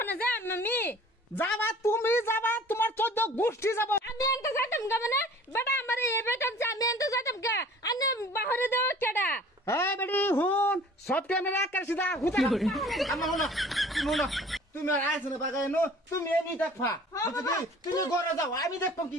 যা আমি যাবা, তুমি যাবা, তোমার 14 গোষ্ঠী যাব। আমি এনতে যাইতাম গা মানে বেটা আমার এই বেটা আমি এনতে যাইতাম গা আনে বাহিরে দেও কেডা। এই বেডি হুন সব ক্যামেরা কার সিধা হুতা আমার হলো শুনো তুমি আর আইছ না বাগাই নো, তুমি এনি দেখবা তুমি ঘরে যাও, আমি দেখবো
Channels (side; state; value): both; normal; correlation 0.49